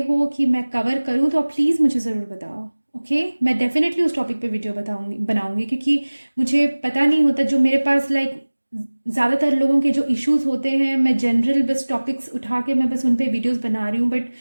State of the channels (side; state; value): both; inverted; correlation -1.00